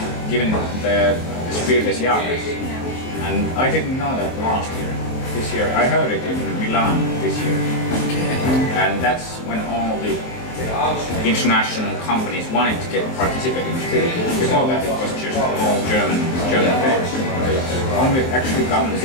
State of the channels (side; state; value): right; late; 23 ms